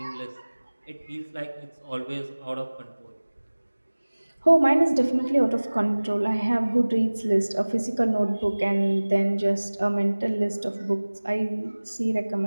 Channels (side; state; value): both; inverted; correlation -1.00